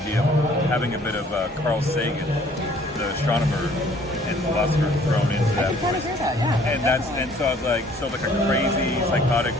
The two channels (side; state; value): both; normal; correlation 0.57